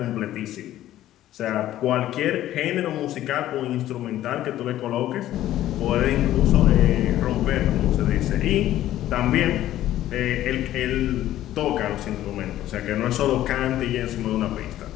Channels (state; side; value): quieter; right; 13.4 dB